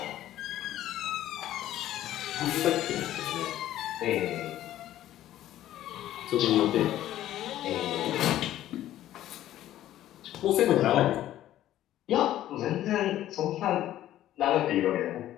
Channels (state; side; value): quieter; right; 13.1 dB